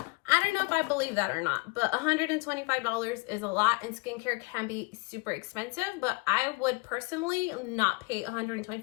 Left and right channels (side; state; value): right; quieter; 27.6 dB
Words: I don't know if I believe that or not, but $125 is a lot, and skincare can be super expensive, but I would personally not pay